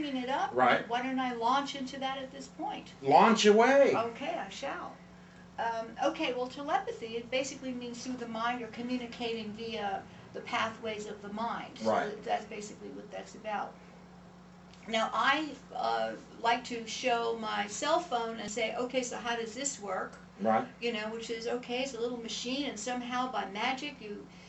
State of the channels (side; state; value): both; identical; correlation 1.00